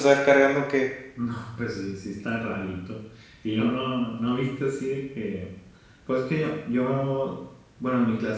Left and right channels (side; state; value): both; identical; correlation 1.00